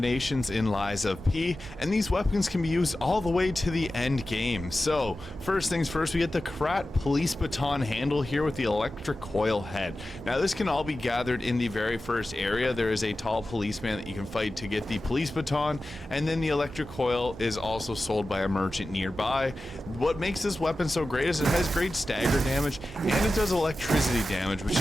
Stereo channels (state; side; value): normal; both; correlation 0.94